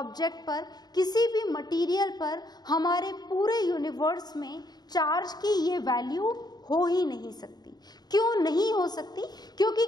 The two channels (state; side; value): late; right; 0.20 ms